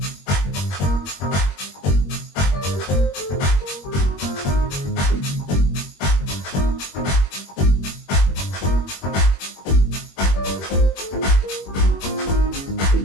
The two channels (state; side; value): late; right; 21 ms